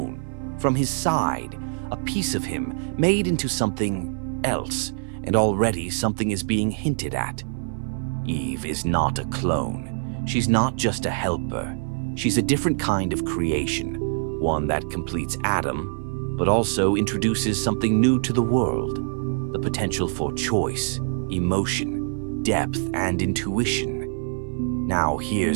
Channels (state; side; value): silent; left; 57 dB below the other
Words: from his side, a piece of him made into something else, and already something is being hinted at. Eve is not a clone. She's not just a helper. She's a different kind of creation, one that completes Adam, but also introduces something new to the world. The potential for choice, emotion, depth, and intuition. Now